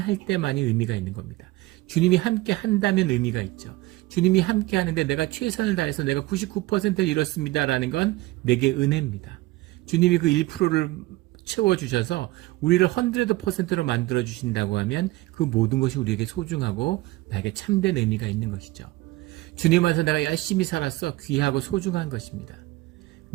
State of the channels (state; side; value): quieter; left; 19.4 dB